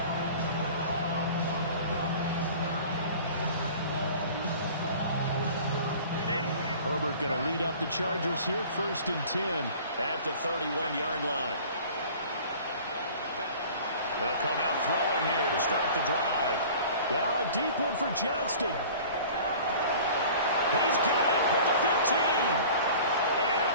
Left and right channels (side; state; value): both; inverted; correlation -0.44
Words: Herbert going to lead up the Chargers here, 1st and 10. At the 31-yard line. They'll come out throwing here to start the drive. Now a deep one for Johnston. He's got it at the 15. And